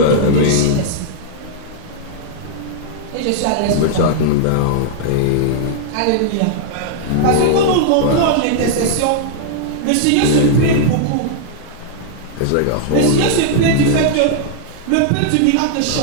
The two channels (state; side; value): different; both; correlation -0.01